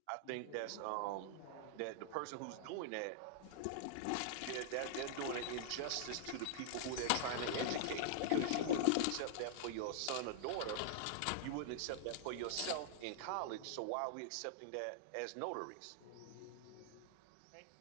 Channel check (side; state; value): both; different; correlation -0.01